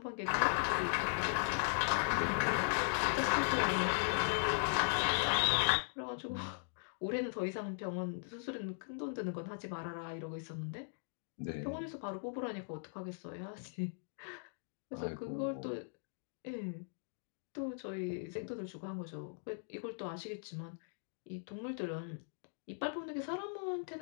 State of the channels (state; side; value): silent; right; digital silence